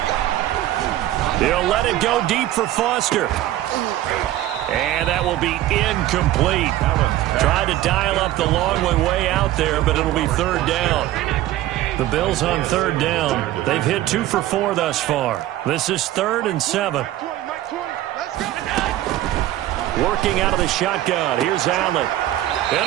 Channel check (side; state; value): left; quieter; 14.2 dB